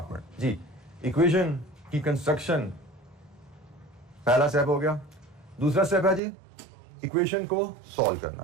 जी, इक्वेशन की कंस्ट्रक्शन पहला स्टेप हो गया। दूसरा स्टेप है जी इक्वेशन को सॉल्व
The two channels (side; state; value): left; drops out; at 6.2 s